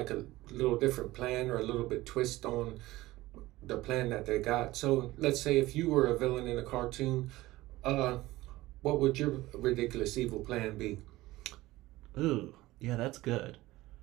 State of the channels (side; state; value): left; quieter; 18.1 dB